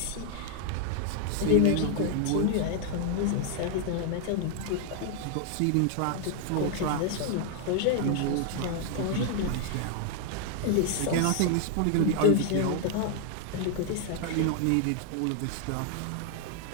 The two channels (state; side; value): different; both; correlation 0.00